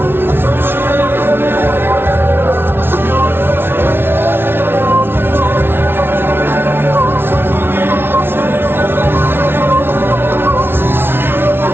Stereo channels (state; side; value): late; left; 0.11 ms